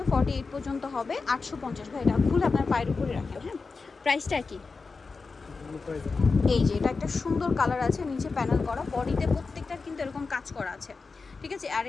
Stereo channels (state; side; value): quieter; right; 4.4 dB